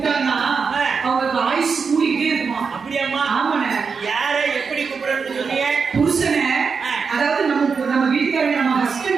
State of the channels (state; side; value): quieter; left; 5.4 dB